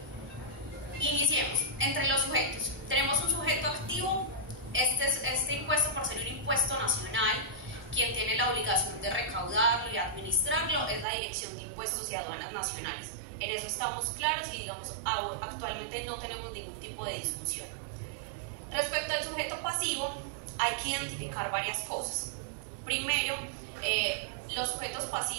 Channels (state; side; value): drops out; left; at 11.1 s